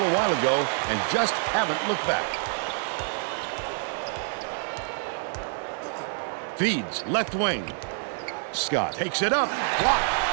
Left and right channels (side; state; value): left; silent; 60 dB below the other